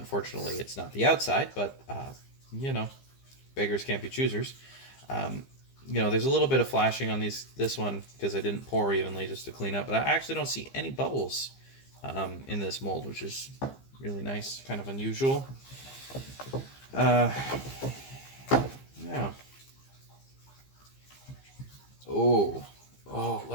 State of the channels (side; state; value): right; late; 15 ms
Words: it's not the outside, but you know, beggars can't be choosers. There's a little bit of flashing on this one because I didn't pour evenly just to clean up, but I actually don't see any bubbles in this mold, which is really nice, kind of unusual. Yeah. Oh,